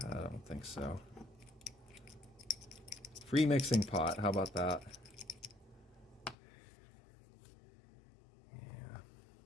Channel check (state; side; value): drops out; right; at 6.4 s